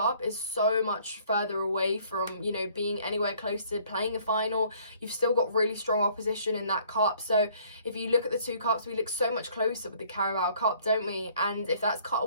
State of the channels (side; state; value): both; inverted; correlation -0.59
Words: is so much further away from, you know, being anywhere close to playing a final. You've still got really strong opposition in that cup. So if you look at the two cups, we look so much closer with the Carabao Cup, don't we? And if that's cut